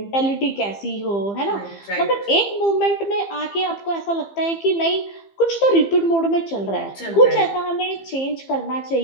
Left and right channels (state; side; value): late; right; 15 ms